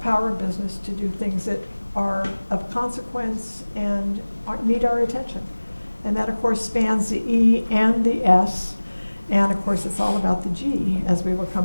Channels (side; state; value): both; inverted; correlation -1.00